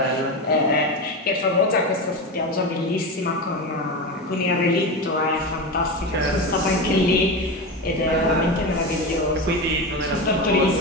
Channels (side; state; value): both; normal; correlation 0.20